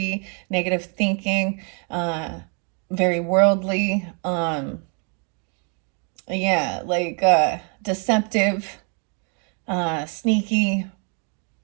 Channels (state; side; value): quieter; left; 38.2 dB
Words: negative thinking, very worldly, deceptive, sneaky,